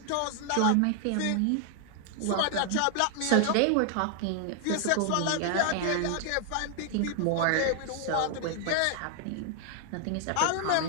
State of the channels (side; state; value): both; different; correlation 0.00